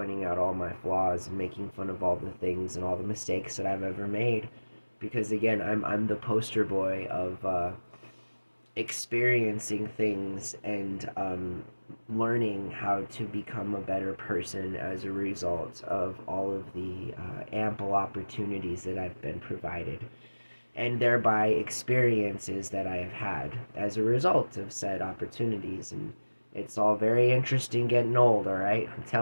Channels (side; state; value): both; inverted; correlation -1.00